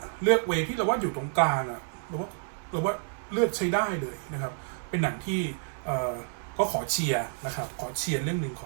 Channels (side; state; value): left; silent; digital silence